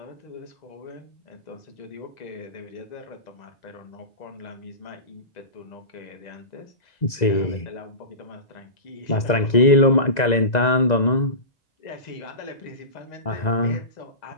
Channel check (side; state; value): right; late; 2.0 ms